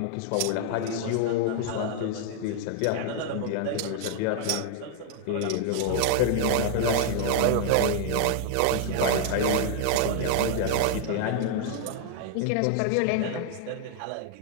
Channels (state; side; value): different; both; correlation 0.00